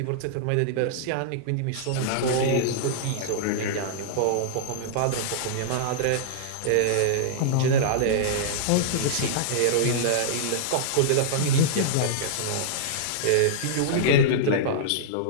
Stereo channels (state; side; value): different; both; correlation -0.02